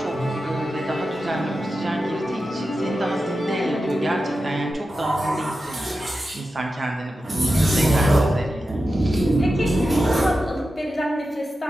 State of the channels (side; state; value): both; normal; correlation 0.91